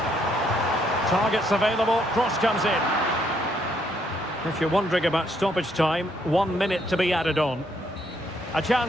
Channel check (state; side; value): normal; both; correlation 0.72